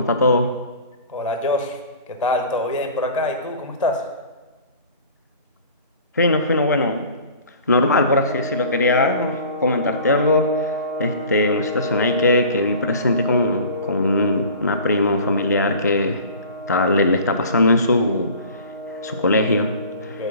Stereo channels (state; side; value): inverted; both; correlation -0.44